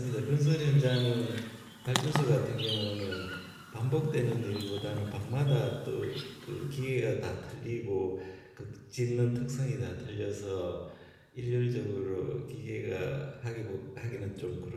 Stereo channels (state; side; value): identical; both; correlation 1.00